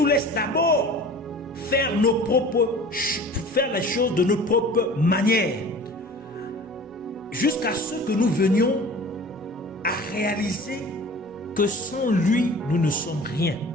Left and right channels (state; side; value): normal; both; correlation 0.42